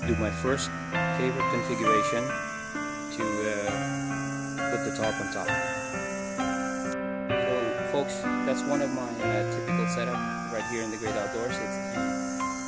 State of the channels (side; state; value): right; noise; rumble, 23 dB below the sound